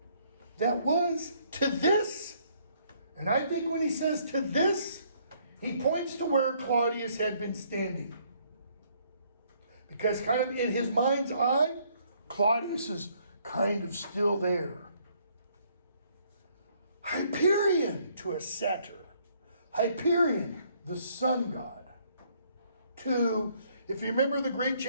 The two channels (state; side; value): inverted; both; correlation -0.66